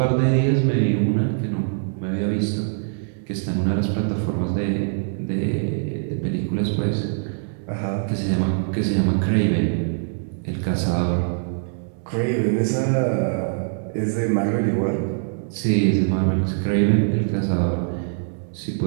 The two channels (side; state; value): left; silent; digital silence